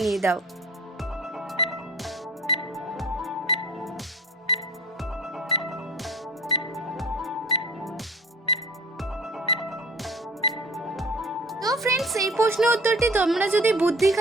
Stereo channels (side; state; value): both; normal; correlation 0.42